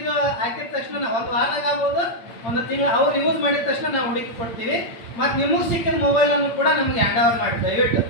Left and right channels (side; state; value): right; late; 8.8 ms